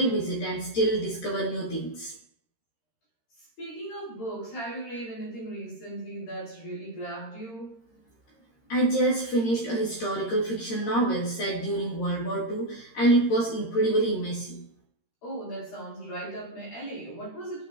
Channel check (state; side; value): late; right; 13 ms